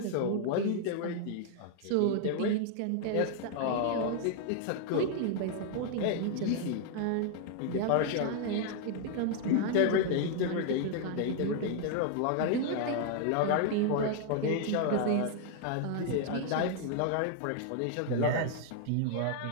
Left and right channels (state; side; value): different; both; correlation 0.00